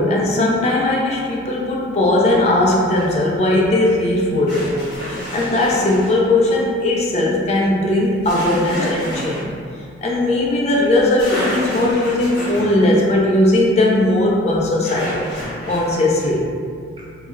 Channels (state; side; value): noise; left; hum, 28 dB below the sound